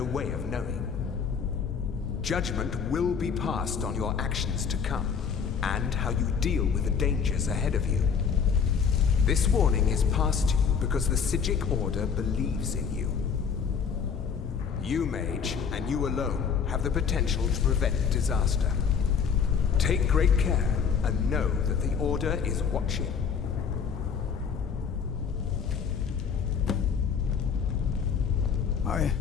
way of knowing. Judgment will be passed on your actions to come, and how you deal with the dangers ahead of you. This warning is passed to you because the Psijic Order believes in you. You, mage, and you alone, have the potential to prevent disaster. Take great care, and know that the Order is watching. I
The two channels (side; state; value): right; quieter; 6.5 dB